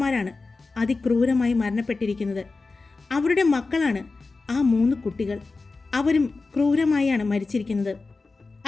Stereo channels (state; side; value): quieter; right; 3.8 dB